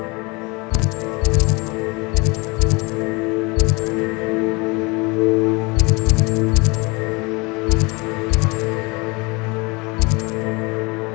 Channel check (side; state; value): right; quieter; 27.1 dB